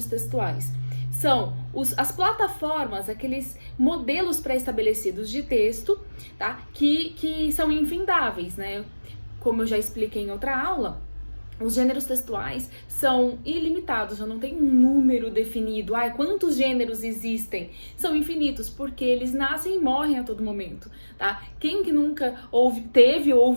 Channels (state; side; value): inverted; both; correlation -1.00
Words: textuais? São as plataformas, aqueles modelos pré-estabelecidos de texto, tá? Que são infindáveis, né? Como eu já expliquei em outra aula, os gêneros textuais são ilimitados, já não tem um número definido. Quantos gêneros existem? São infinitos, porque eles nascem e morrem a todo momento, tá? Quem que nunca teve ou